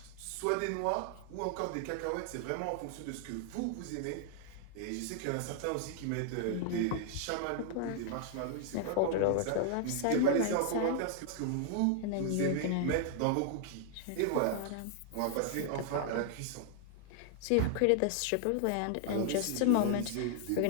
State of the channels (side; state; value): both; different; correlation 0.00